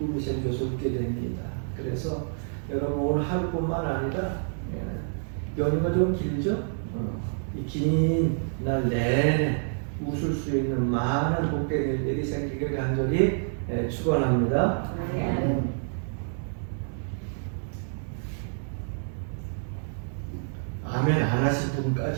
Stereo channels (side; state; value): left; silent; digital silence